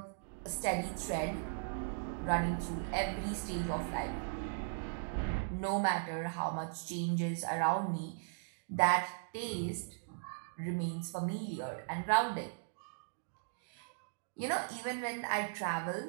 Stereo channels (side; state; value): left; silent; digital silence